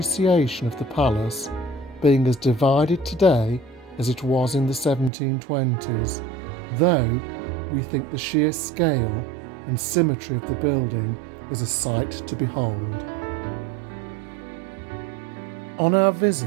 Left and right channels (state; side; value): drops out; left; at 5.1 s